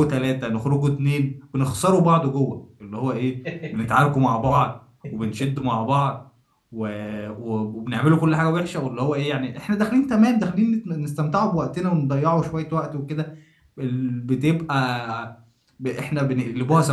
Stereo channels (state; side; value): identical; both; correlation 1.00